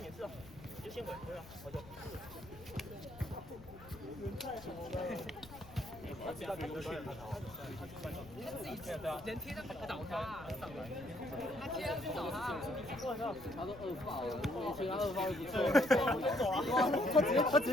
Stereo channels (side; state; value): left; noise; rumble, 18 dB below the sound